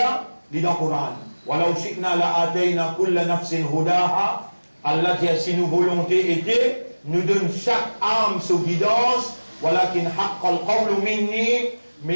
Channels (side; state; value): both; inverted; correlation -1.00